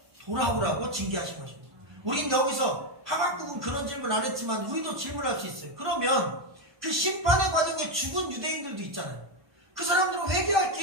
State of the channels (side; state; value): left; late; 1.3 ms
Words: 돌아오라고 징계하신 것입니다. 우린 여기서 하박국은 그런 질문 안 했지만 우리도 질문할 수 있어요. 그러면 그 심판의 과정에 죽은 유대인들도 있잖아요. 그 사람들은 회개할